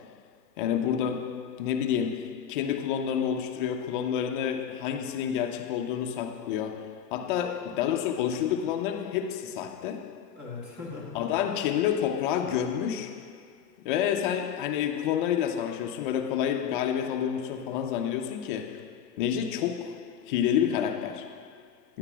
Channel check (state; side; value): quieter; right; 8.9 dB